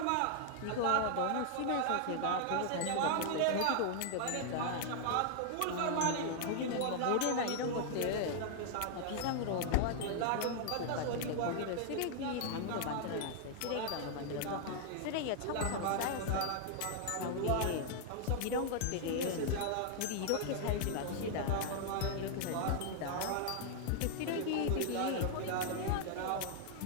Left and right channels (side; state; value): both; different; correlation 0.00